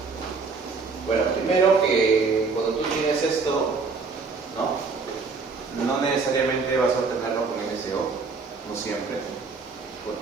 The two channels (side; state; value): left; quieter; 4.5 dB